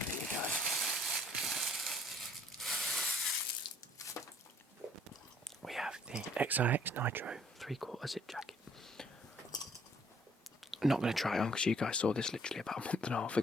for you guys. We have the XIX Nitro 3/4 zip jacket. I'm not going to try it on because you guys saw this literally about a month and a half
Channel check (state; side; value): normal; both; correlation 0.62